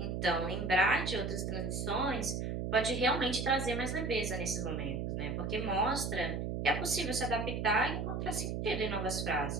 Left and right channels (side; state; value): right; noise; hum, 2 dB below the sound